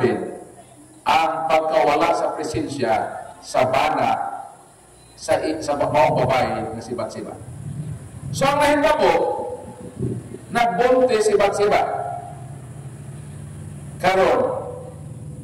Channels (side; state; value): both; identical; correlation 1.00